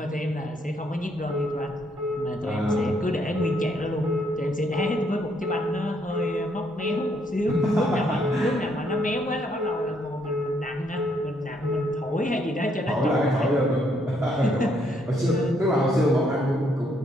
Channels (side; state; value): both; normal; correlation 0.71